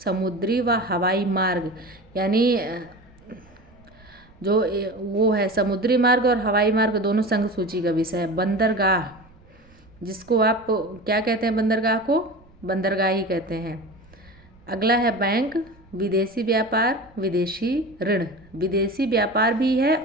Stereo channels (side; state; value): right; noise; rumble, 27 dB below the sound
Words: व हवाई मार्ग यानी जो वो है समुद्री मार्ग और हवाई मार्ग दोनों संघ सूची का विषय है। बंदरगाह जिसको आप क्या कहते हैं, बंदरगाह को बंदरगाह ही कहते हैं। अगला है बैंक, विदेशी व्यापार, विदेशी ऋण, विदेशी व्यापार भी है